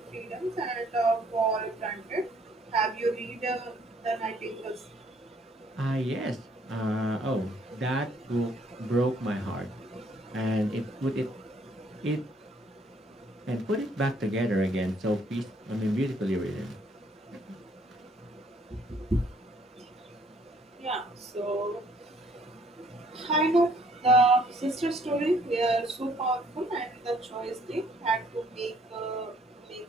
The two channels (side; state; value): both; normal; correlation 0.63